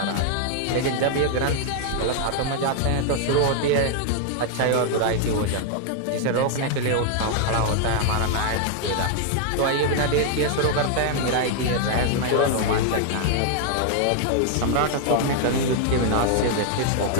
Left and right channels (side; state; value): both; different; correlation 0.00